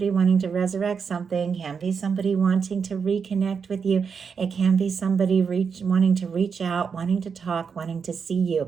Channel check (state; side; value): quieter; left; 6.1 dB